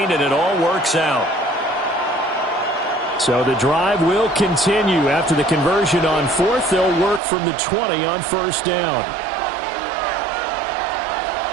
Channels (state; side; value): drops out; left; at 7.2 s